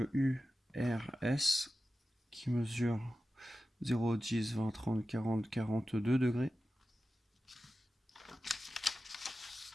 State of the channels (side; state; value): both; normal; correlation 0.94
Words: URS qui mesure 0, 10, 20, 30, 40, 42 degrés.